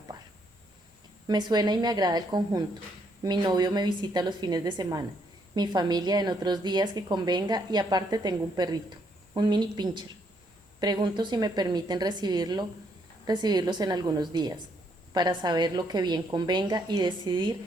Me suena y me agrada el conjunto. Mi novio me visita los fines de semana. Mi familia en otros días que convenga y aparte tengo un perrito, un mini pincher. Pregunto si me permiten recibirlos en algunos días, para saber lo que bien convenga y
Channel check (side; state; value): both; normal; correlation 0.72